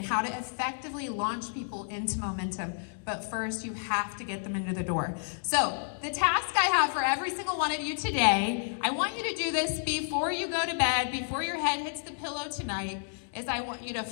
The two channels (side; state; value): right; silent; digital silence